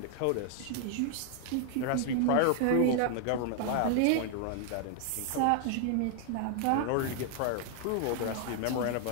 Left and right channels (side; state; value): both; different; correlation 0.00